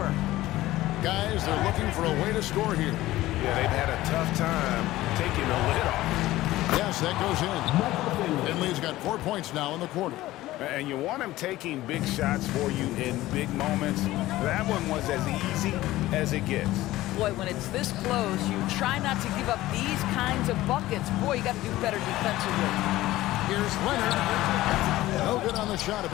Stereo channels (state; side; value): quieter; right; 16.5 dB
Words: Guys, they're looking for a way to score here. Yeah, they've had a tough time taking the lid off. Yes, that goes in. Finley's got 4 points now in the quarter. And you want him taking big shots for you in big moments. That one was as easy as it gets. Boy, when it's this close, you try not to give up these kinds of buckets. Boy, you got to do better defensively. Here's Leonard. No good on the shot. A